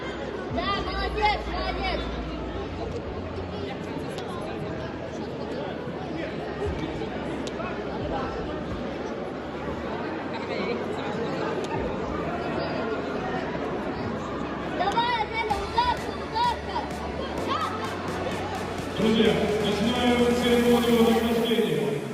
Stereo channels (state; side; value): identical; both; correlation 1.00